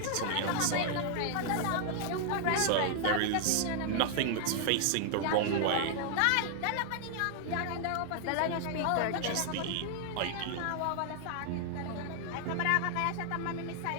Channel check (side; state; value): both; different; correlation 0.00